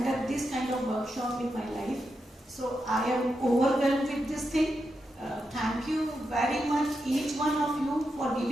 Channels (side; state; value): both; normal; correlation 0.86